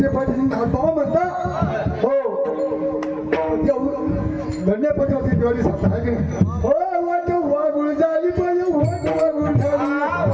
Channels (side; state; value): both; identical; correlation 1.00